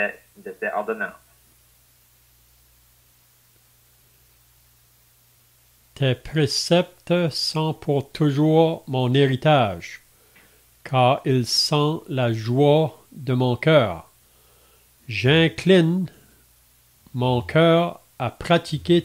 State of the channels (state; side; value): identical; both; correlation 1.00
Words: ordonnances. Tes préceptes sont pour toujours mon héritage, car ils sont la joie de mon cœur. J'incline mon cœur à pratiquer